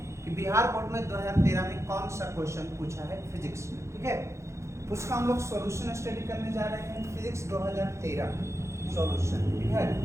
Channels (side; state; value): left; late; 0.14 ms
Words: कि बिहार बोर्ड में 2013 में कौन सा क्वेश्चन पूछा है फिजिक्स में। ठीक है, उसका हम लोग सॉल्यूशन स्टडी करने जा रहे हैं, फिजिक्स 2013 सॉल्यूशन। ठीक है,